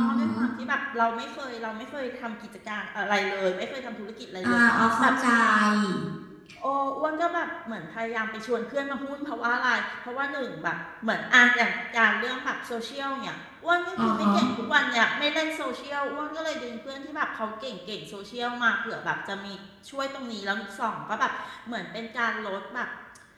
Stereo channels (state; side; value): identical; both; correlation 1.00